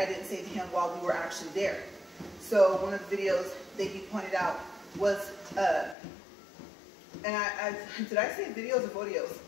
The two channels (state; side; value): drops out; right; at 6.0 s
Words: didn't say to him while we were actually there. So one of the videos that he pointed out was, and did I say videos or videos?